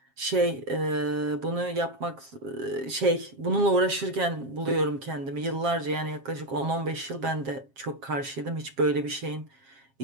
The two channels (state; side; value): late; left; 7.4 ms